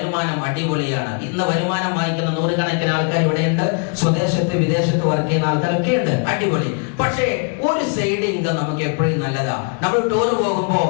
അടിപൊളിയാണ്. ഇന്ന് വരുമാനം വാങ്ങിക്കുന്ന നൂറുകണക്കിന് ആൾക്കാർ ഇവിടെയുണ്ട്. സ്വദേശത്ത് വിദേശത്ത് വർക്ക് ചെയ്യുന്ന ആൾക്കാരൊക്കെ ഉണ്ട്, അടിപൊളി. പക്ഷേ ഒരു സൈഡ് ഇൻകം നമുക്ക് എപ്പോഴും നല്ലതാ. നമ്മൾ ടൂർ പോകുമ്പോ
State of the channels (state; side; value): quieter; right; 39.3 dB